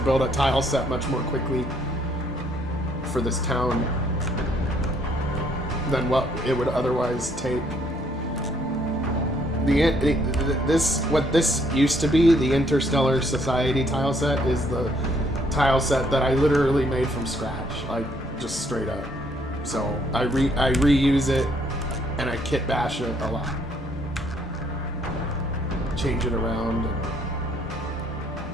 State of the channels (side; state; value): both; normal; correlation 0.67